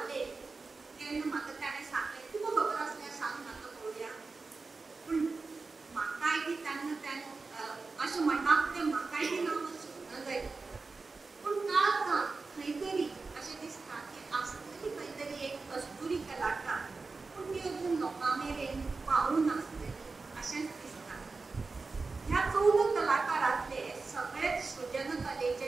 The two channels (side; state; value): left; quieter; 4.0 dB